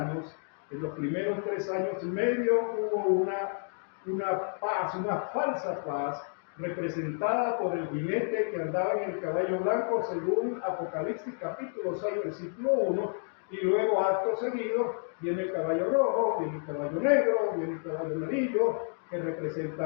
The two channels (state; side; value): silent; right; 58 dB below the other